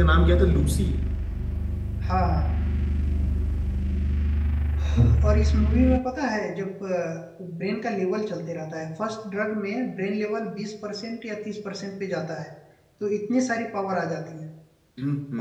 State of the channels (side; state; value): both; identical; correlation 1.00